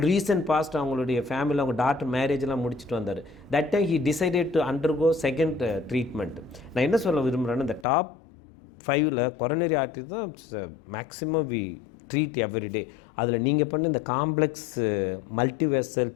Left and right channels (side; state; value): right; drops out; at 7.9 s